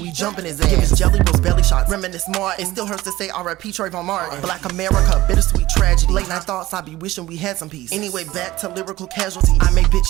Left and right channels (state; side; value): quieter; left; 16.9 dB